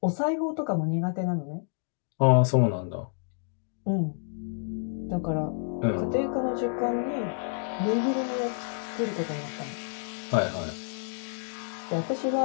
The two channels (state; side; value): silent; right; 59 dB below the other